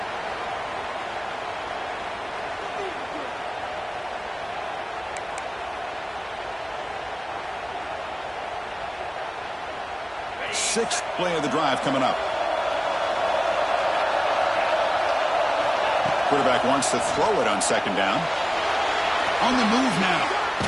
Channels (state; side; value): identical; both; correlation 1.00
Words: Sixth play of the drive coming up. Quarterback wants to throw it on second down. On the move now.